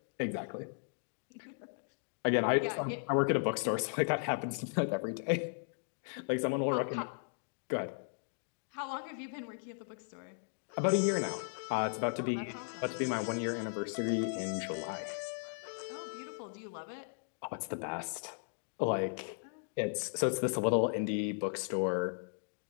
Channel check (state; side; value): silent; right; digital silence